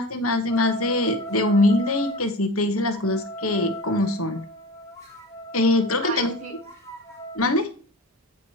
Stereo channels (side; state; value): both; normal; correlation 0.33